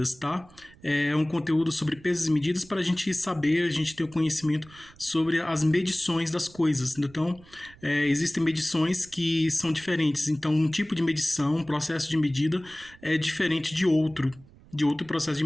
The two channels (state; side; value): noise; right; rumble, 24 dB below the sound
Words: tá? É um conteúdo sobre pesos e medidas para a gente saber, a gente ter o conhecimento sobre as medições das coisas. Então, existem medições que são diferentes. Então, um tipo de medição, um processo de medida é diferente de outro processo de